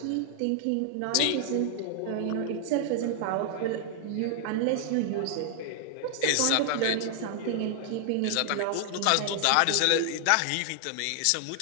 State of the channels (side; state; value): both; different; correlation 0.00